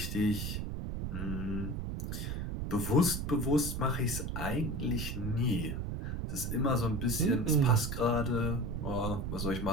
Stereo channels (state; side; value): noise; right; rumble, 3 dB below the sound